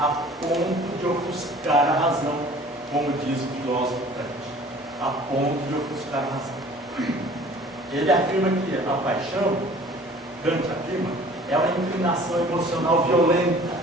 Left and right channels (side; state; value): both; normal; correlation 0.49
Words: ponto de ofuscar a razão, como diz o filósofo Kant, a ponto de ofuscar a razão. Ele afirma que a paixão, Kant afirma, é uma inclinação emocional violenta,